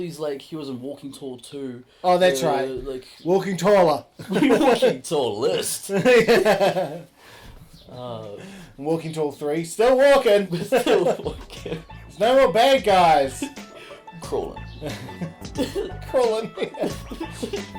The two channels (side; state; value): both; identical; correlation 1.00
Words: he was in Walking Tall 2. Oh, that's right. Like Walking Taller. Walking Tall list. Yeah. Walking Tall 3. Still walking. Still walking. There's no more bad guys. Crawling. Crawling.